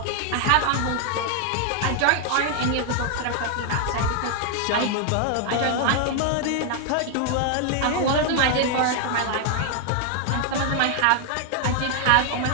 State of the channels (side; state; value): both; different; correlation 0.00